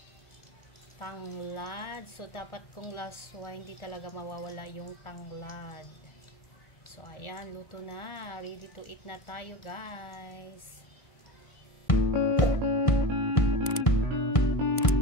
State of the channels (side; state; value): right; late; 1.5 ms